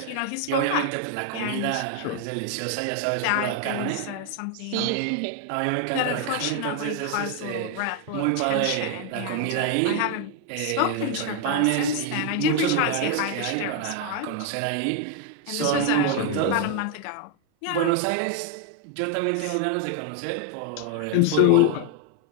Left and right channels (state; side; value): different; both; correlation 0.01